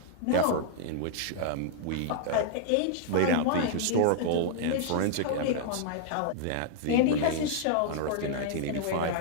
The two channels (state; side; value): different; both; correlation -0.01